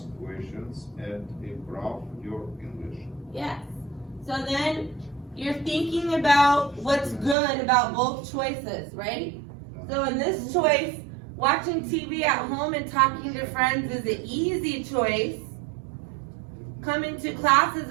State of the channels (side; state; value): left; drops out; at 7.4 s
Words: questions, and improve your English. Yes. So then you're thinking about what's good about both choices, right? So in this choice, watching TV at home and talking to friends is an easy choice. Coming to class is